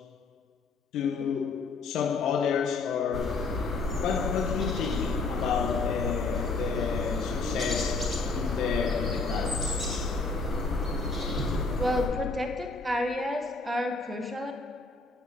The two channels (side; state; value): right; quieter; 3.7 dB